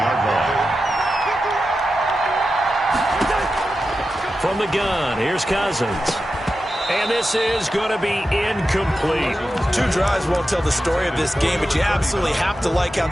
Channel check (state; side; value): normal; both; correlation 0.91